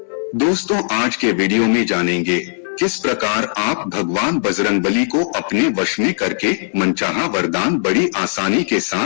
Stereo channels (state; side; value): silent; right; digital silence